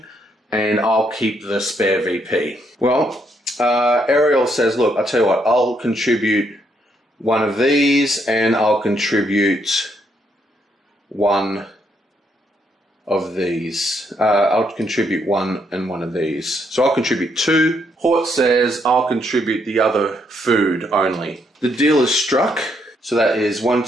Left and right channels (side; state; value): both; normal; correlation 0.74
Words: and I'll keep the spare VP. Well, Ariel says, look, I'll tell you what, I'll contribute one of these, and I'll contribute one of these. I'll contribute one and one of these. So I'll contribute two. Hort says I'll contribute the other food only. The deal is struck. So that is 1,